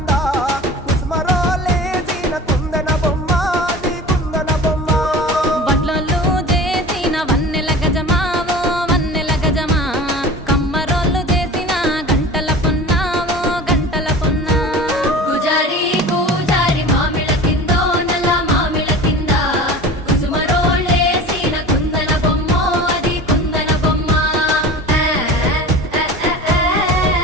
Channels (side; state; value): both; normal; correlation 0.37